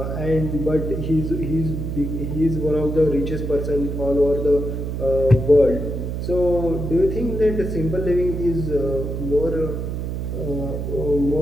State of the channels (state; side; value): noise; right; hum, 3 dB below the sound